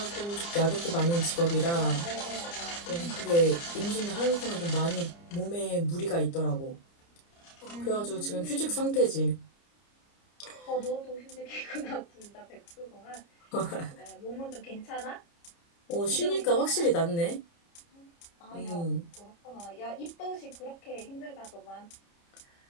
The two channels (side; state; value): right; late; 29 ms